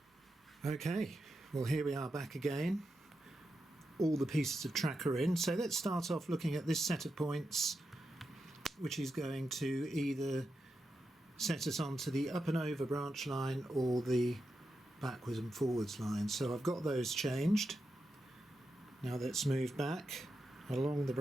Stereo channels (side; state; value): both; normal; correlation 0.87